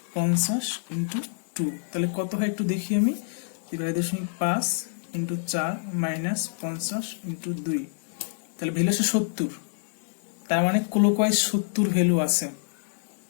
ইন্টু 2, তাহলে কত হয় একটু দেখি আমি, 42.5 ইন্টু 4 -50 ইন্টু 2, তাহলে ভ্যালু আছে 70। তার মানে ক্লোকওয়াইজ 70 ভ্যালু আছে,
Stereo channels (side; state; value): right; silent; 55 dB below the other